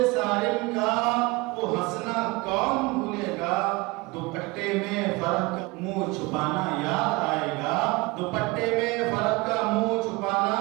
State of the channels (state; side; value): quieter; left; 23.6 dB